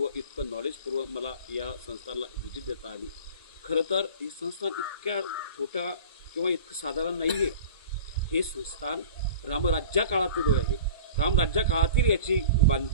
इतकं नॉलेजपूर्व मला या संस्थानला व्हिजिट देता आली। खरं तर हे संस्थान इतक्या छोट्या किंवा इतकं साधारण नाही आहे। हे संस्थान रामराज्या काळातील आहे। रामराज्या काळातील याची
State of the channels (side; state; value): both; inverted; correlation -0.40